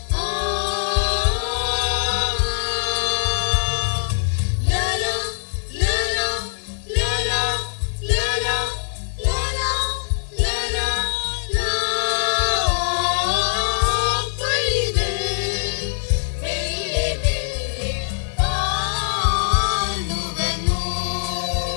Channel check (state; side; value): silent; right; digital silence